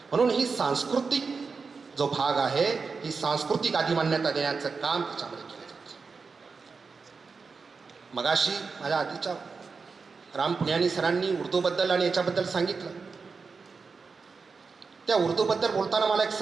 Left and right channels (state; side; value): quieter; left; 4.8 dB